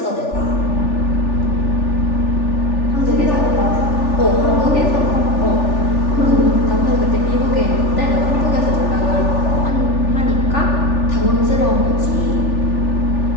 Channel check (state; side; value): late; right; 3.4 ms